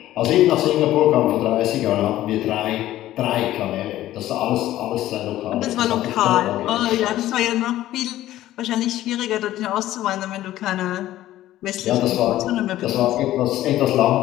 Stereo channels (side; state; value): right; quieter; 14.3 dB